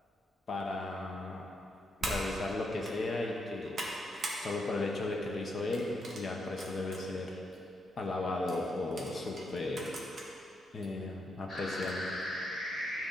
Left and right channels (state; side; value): normal; both; correlation 0.80